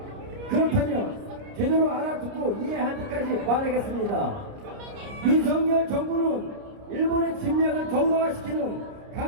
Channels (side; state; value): left; late; 29 ms